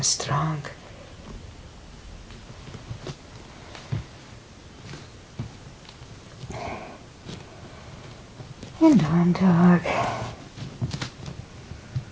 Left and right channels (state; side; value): identical; both; correlation 1.00